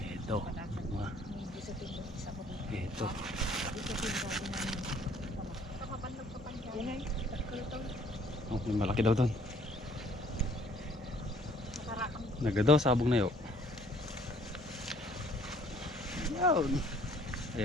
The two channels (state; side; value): normal; both; correlation 0.59